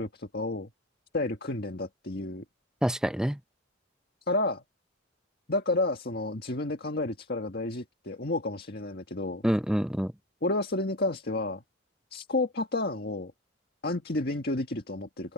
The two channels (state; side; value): normal; both; correlation 0.24